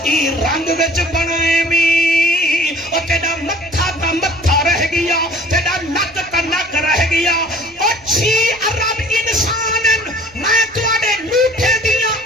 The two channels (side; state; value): right; noise; rumble, 29 dB below the sound